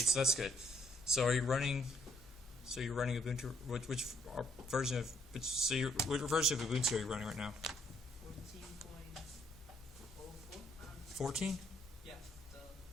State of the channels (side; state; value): both; normal; correlation 0.70